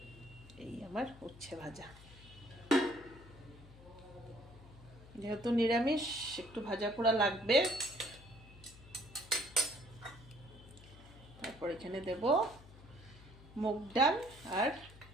এই আমার উচ্ছে ভাজা, যেহেতু নিরামিষ একটু ভাজা পোড়া লাগবে। তারপর এখানে দেব মুগ ডাল আর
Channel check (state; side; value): noise; left; hum, 20 dB below the sound